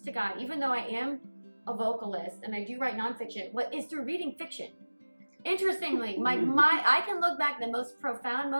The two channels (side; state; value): both; inverted; correlation -1.00